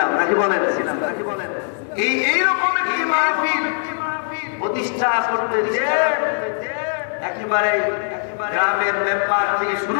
নাকি বলেন এইরকম একটি মাহফিল প্রতিষ্ঠা করতে যে একেবারে গ্রামের মেম্বার থেকে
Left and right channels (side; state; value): right; silent; digital silence